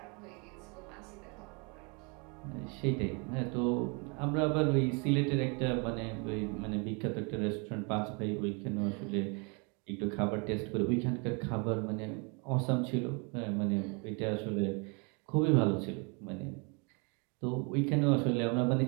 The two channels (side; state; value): left; quieter; 32.6 dB